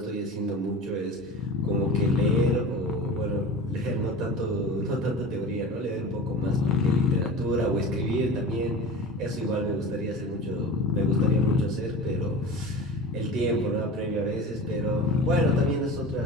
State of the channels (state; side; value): normal; both; correlation 0.33